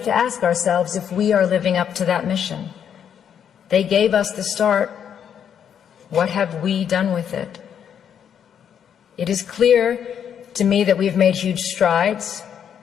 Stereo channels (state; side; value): quieter; right; 8.5 dB